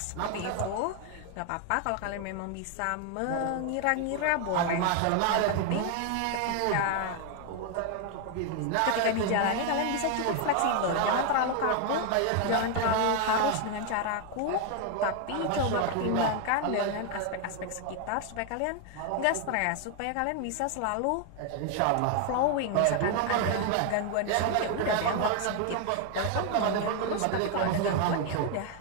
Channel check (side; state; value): both; different; correlation 0.01